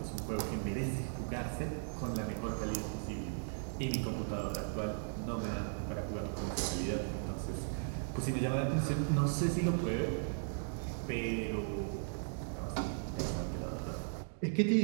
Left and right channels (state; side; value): silent; left; digital silence